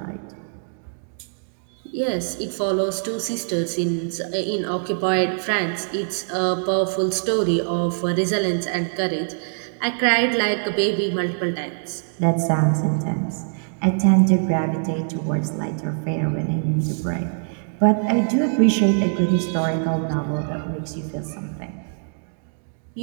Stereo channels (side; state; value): left; silent; digital silence